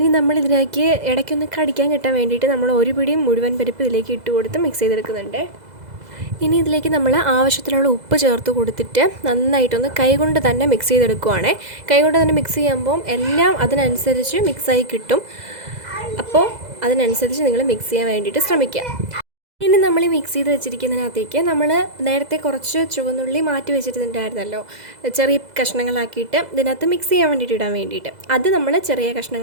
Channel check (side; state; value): left; late; 2.0 ms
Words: നമ്മളിതിലേക്ക് ഇടയ്ക്കൊന്ന് കടിക്കാൻ കിട്ടാൻ വേണ്ടിയിട്ട് നമ്മൾ ഒരു പിടിയും മുഴുവൻ പരിപ്പ് ഇതിലേക്ക് ഇട്ട് കൊടുത്ത് മിക്സ് ചെയ്തെടുക്കുന്നുണ്ട്. ഇനി ഇതിലേക്ക് നമ്മൾ ആവശ്യത്തിനുള്ള ഉപ്പ് ചേർത്ത് കൊടുത്തിട്ട് നന്നായിട്ടൊന്ന് കൈകൊണ്ട് തന്നെ മിക്സ് ചെയ്തെടുക്കുവാണേ. കൈകൊണ്ട് തന്നെ മിക്സ് ചെയ്യുമ്പം എല്ലാം അതിനനുസരിച്ച് മിക്സായി കിട്ടും. അപ്പോൾ അതിനനുസരിച്ച് നിങ്ങൾ മിക്സ് ചെയ്യാൻ വേണ്ടിയിട്ട് ശ്രമിക്കുക. ഇനി നമ്മൾ ഈ മിക്സ് ചെയ്ത് വെച്ചിരിക്കുന്നതിനകത്തേക്ക് നമ്മൾ നേരത്തെ കുറച്ച് ചുവന്നുള്ളി മാറ്റി വെച്ചിട്ടുണ്ടായിരുന്നല്ലോ, ചെറിയ കഷ്ണങ്ങളാക്കിയിട്ട് ഇതിനകത്ത് മിക്സ് ചെയ്യാൻ വേണ്ടിയിട്ട് ഇടാൻ വേണ്ടിയിട്ട്. അത് നമ്മൾ ചെറിയ